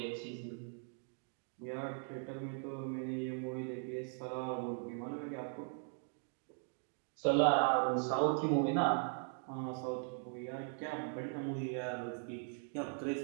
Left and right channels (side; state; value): left; silent; 51 dB below the other